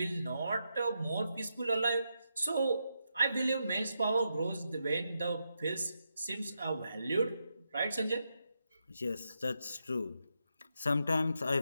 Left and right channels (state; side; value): inverted; both; correlation -0.84